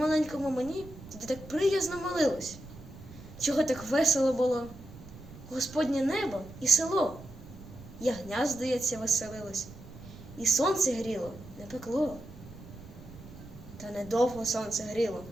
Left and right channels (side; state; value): right; noise; rumble, 17 dB below the sound